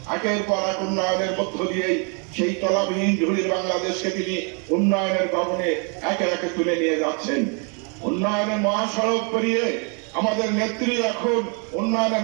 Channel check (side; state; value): left; quieter; 36.9 dB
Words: একের পর এক উন্নয়নের মধ্য দিয়েই সেই তলাবিহীন ঝুড়ির বাংলাদেশকে তিনি উন্নয়নের গগনে একে একে তুলে নিয়ে যাচ্ছেন। উন্নয়নের মহাসড়ক পেরিয়ে আমাদের নেত্রী এখন উন্নয়নের